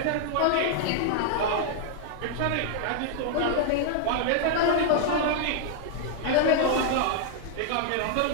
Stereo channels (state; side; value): different; both; correlation 0.00